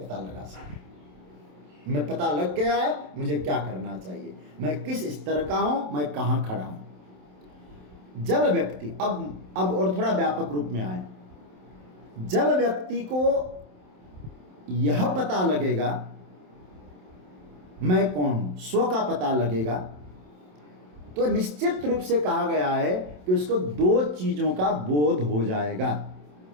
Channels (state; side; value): late; left; 27 ms